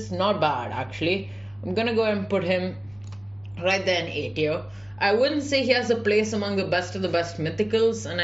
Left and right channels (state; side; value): noise; left; rumble, 28 dB below the sound